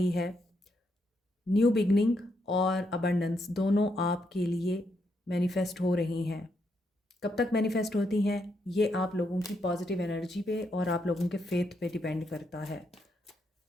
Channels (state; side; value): normal; both; correlation 0.79